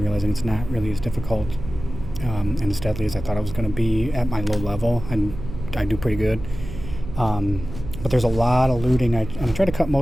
realizing it's not really as difficult and as deadly as I thought it was going to be at my low level, and I do pretty good. But there's a lot of looting. I try to cut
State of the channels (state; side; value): noise; right; hum, 10 dB below the sound